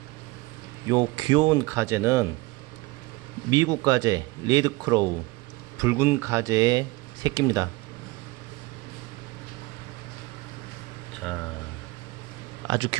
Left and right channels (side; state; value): left; quieter; 22.2 dB